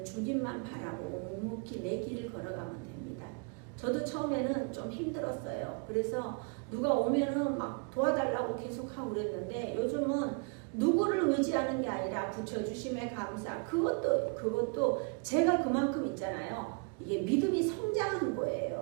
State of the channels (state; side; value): quieter; left; 35.3 dB